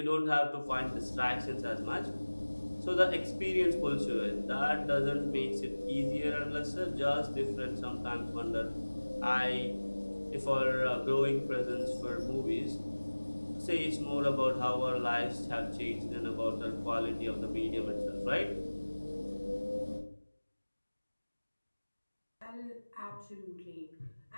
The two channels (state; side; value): inverted; both; correlation -1.00